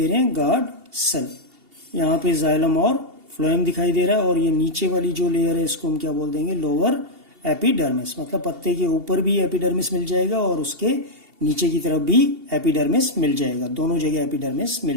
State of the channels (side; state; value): left; late; 2.8 ms